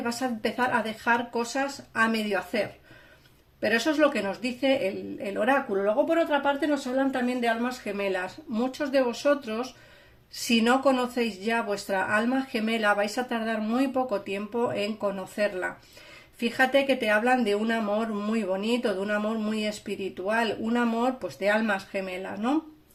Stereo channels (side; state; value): both; identical; correlation 1.00